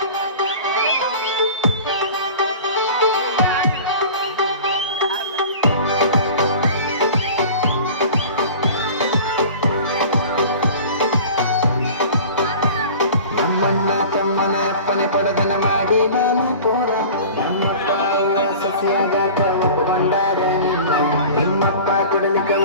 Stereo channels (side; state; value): both; inverted; correlation -0.40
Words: ನಮ್ಮಣ್ಣ ತಮ್ಮನ ಅಪ್ಪನೆ ಪಡದನ ಮಾಡಿ ನಾನು ಪೂರ ನಮ್ಮಪ್ಪ ಸಸಿಯಾಗಾಕ ಒಪ್ಪುಕೊಂಡಾರೆ ನಿಮ್ಮಪ್ಪ ಕುಡಲಿಕ್ಕ